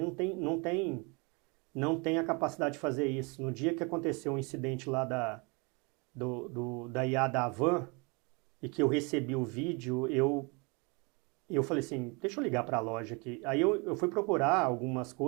não tem a capacidade de fazer isso. No dia que aconteceu um incidente lá da IA da Havan, e que eu recebi o vídeo, eu falei assim, deixa eu ligar para a loja aqui. Aí eu fui procurar algumas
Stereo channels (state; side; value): quieter; left; 30.3 dB